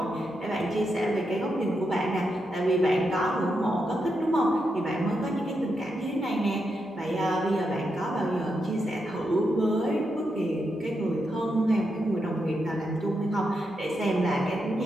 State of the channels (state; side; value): normal; both; correlation 0.84